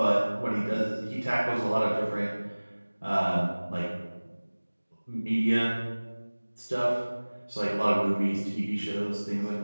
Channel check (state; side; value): inverted; both; correlation -1.00